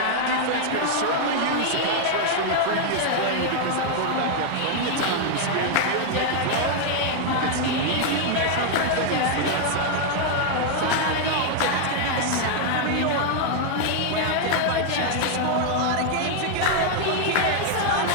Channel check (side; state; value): both; different; correlation 0.00